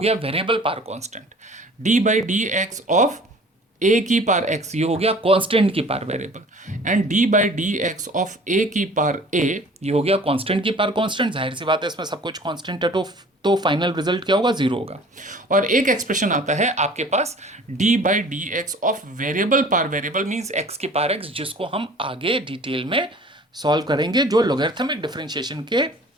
variable power constant, d by d x of a की पावर एक्स, ये हो गया कांस्टेंट की power variable, and d by d x of a की पावर ए, ये हो गया कांस्टेंट की पावर कांस्टेंट। जाहिर सी बात है इसमें सब कुछ कांस्टेंट है, तो फाइनल रिजल्ट क्या होगा, जीरो होगा। और एक एक्सप्रेशन आता है आपके पास d by d x of variable power variable, means x की पावर एक्स, जिसको हम आगे डिटेल में सॉल्व करेंगे, जो लॉगरिथमिक डिफरेंशिएशन के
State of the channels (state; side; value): normal; both; correlation 0.48